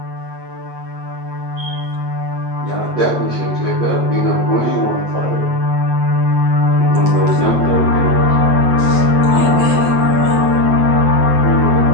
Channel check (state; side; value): late; left; 8.5 ms